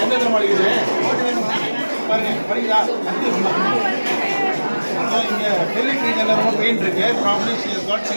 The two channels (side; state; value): both; inverted; correlation -1.00